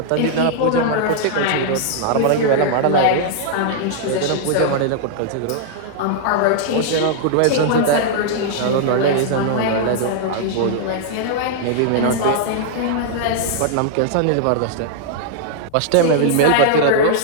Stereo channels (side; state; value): both; different; correlation -0.01